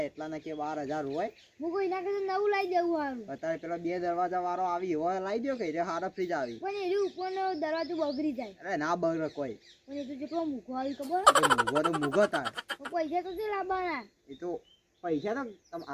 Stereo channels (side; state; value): both; identical; correlation 1.00